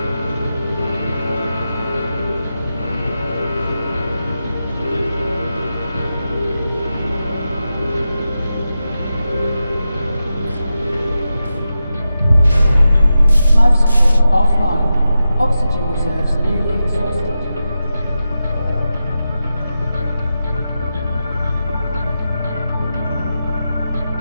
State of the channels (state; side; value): inverted; both; correlation -0.90